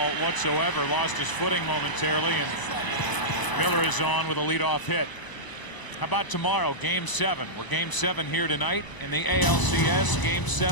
whatsoever. Lost his footing momentarily, and Miller is on with a leadoff hit. How about tomorrow, Game 7? We're Game 7 here tonight in the ALCS, Game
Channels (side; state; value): right; late; 1.0 ms